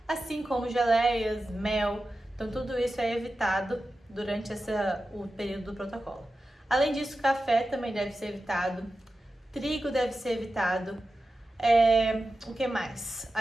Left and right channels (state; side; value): normal; both; correlation 0.93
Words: assim como geleias, mel. Então tudo isso é evitado durante o período do protocolo. Além disso, café também deve ser evitado. Trigo deve ser evitado. O que mais?